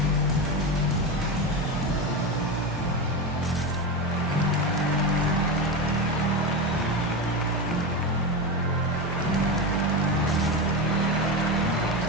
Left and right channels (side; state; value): both; normal; correlation 0.18